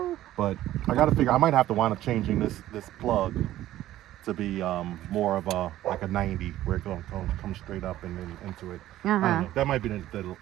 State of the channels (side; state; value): left; quieter; 14.0 dB